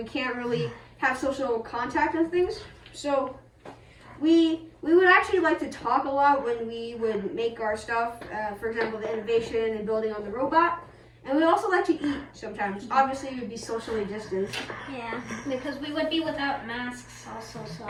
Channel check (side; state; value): both; identical; correlation 1.00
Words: can't really have social contact and things, so we would actually like to talk a lot when we would make our stuff. For example, the innovation and building on the robot. And we also like to eat sometimes. Obviously, we would be socially distanced. Yeah, because we would be without masks also,